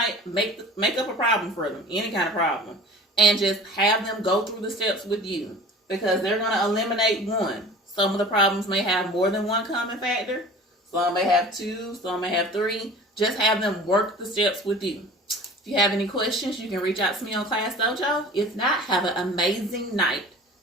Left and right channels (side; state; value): both; normal; correlation 0.41